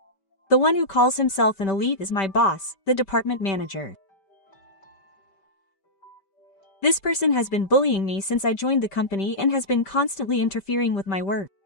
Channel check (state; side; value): late; right; 5.1 ms